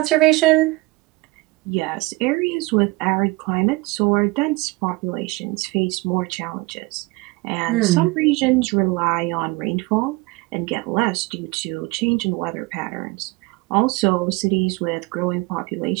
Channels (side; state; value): left; quieter; 23.3 dB